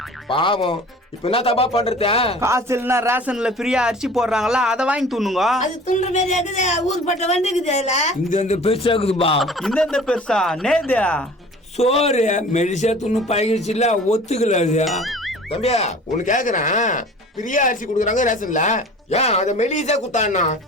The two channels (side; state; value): both; normal; correlation 0.44